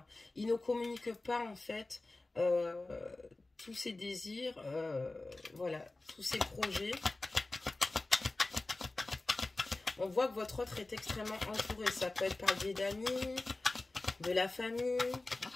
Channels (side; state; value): right; quieter; 3.1 dB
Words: Il ne communique pas en fait tous ses désirs, voilà, tous ses projets. On voit que votre autre est extrêmement entouré. Ça peut être par le biais d'amis, de la famille.